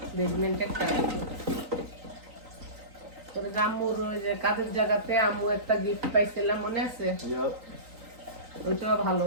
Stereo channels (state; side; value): late; left; 3.9 ms